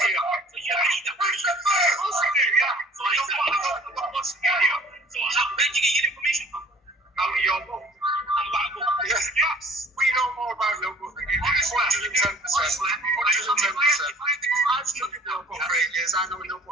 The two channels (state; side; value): normal; both; correlation 0.52